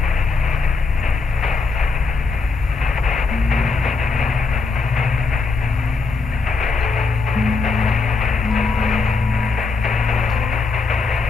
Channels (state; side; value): quieter; right; 4.2 dB